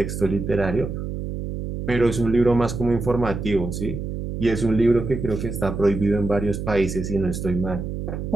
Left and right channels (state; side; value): noise; right; hum, 5 dB below the sound